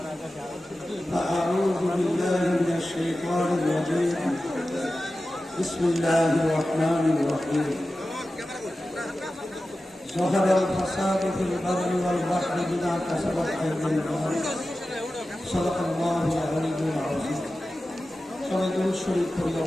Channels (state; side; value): normal; both; correlation 0.94